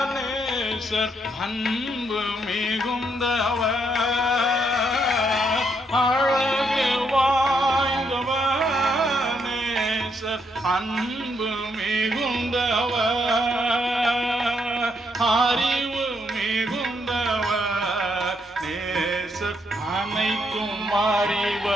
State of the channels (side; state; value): both; normal; correlation 0.76